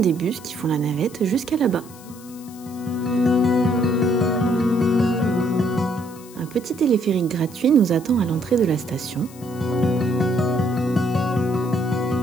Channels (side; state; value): left; noise; hiss, 21 dB below the sound